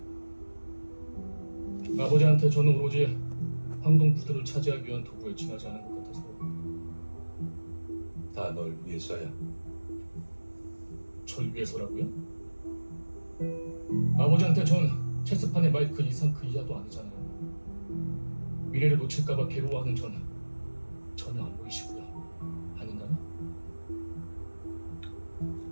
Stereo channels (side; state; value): both; inverted; correlation -1.00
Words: 아버지한테 저는 오로지 황동푸드를 차지하기 위한 도구에 지나지 않은 것 같아서. 다 널 위해서야. 절 위해서라고요? 아버지한테 전 체스판의 말 그 이상 그 이하도 아니잖아요. 미래를 놓칠까봐 괴로워하는 전 전혀 안 보이시고요. 아닌가요?